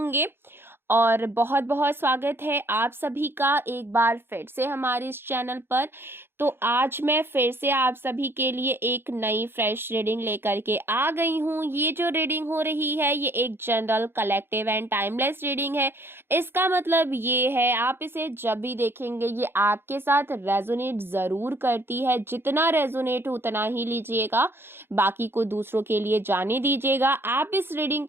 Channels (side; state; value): left; late; 0.11 ms